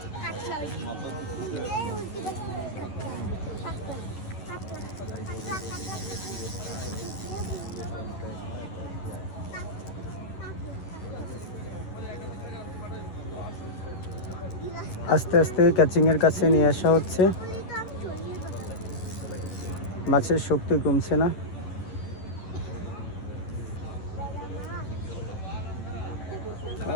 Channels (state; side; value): late; right; 10 ms